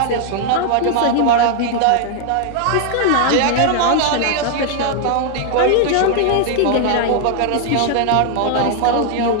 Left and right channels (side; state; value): both; different; correlation 0.00